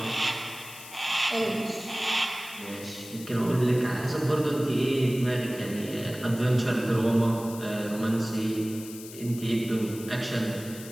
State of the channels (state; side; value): noise; left; hiss, 15 dB below the sound